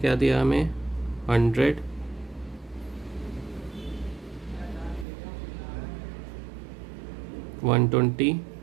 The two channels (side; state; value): left; drops out; at 5.1 s